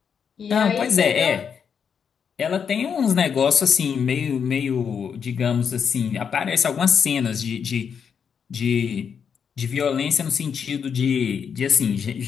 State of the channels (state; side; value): quieter; right; 7.0 dB